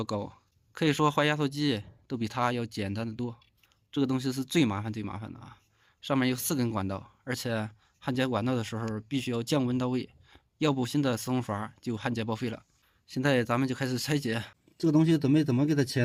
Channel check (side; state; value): both; identical; correlation 1.00